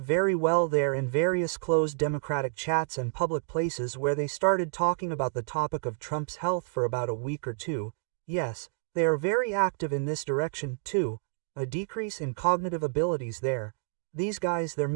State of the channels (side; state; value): left; silent; digital silence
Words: very well there in various closed Democratic chats and public places where they started talking about the topic of Trump's health for about a week or two. Yes, they are very active in this direction, too. A decrease in cognitive abilities there. These guys, there